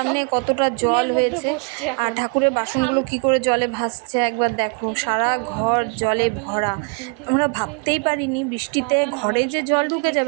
কতটা জল হয়েছে আর ঠাকুরের বাসনগুলো কি করে জলে ভাসছে একবার দেখো। সারা ঘর জলে ভরা। আমরা ভাবতেই পারিনি বৃষ্টিতে ঘরে যে জল ঢুকে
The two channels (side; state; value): left; quieter; 34.8 dB